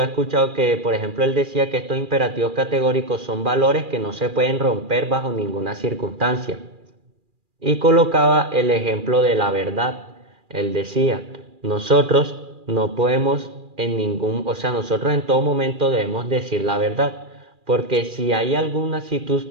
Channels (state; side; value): late; left; 2.4 ms